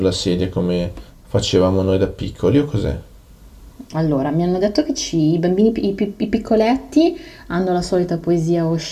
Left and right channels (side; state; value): both; identical; correlation 1.00